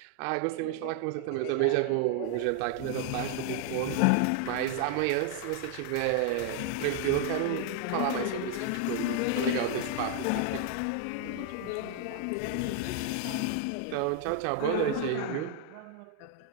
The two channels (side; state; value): both; different; correlation 0.00